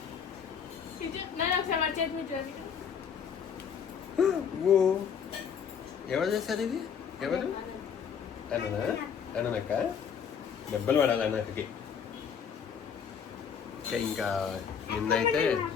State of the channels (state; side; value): quieter; right; 7.2 dB